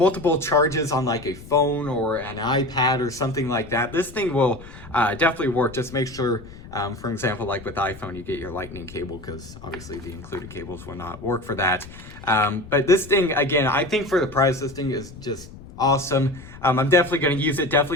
charges on like a phone or an iPad or something like that, this thing will definitely work. Just make sure, for example, like with iPhone, you get your lightning cable, because obviously the included cables will not work for that. But this thing, again, I think for the price, this thing is just awesome. I'm definitely going to use it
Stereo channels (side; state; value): left; noise; rumble, 17 dB below the sound